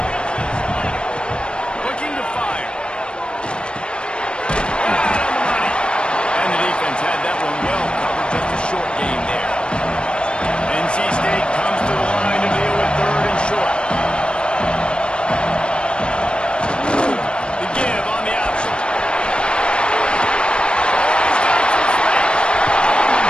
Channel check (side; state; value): right; late; 0.055 ms